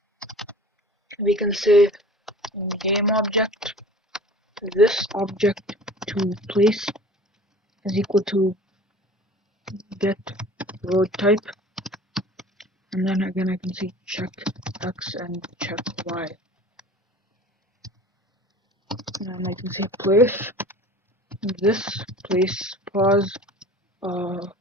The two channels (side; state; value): both; normal; correlation 0.43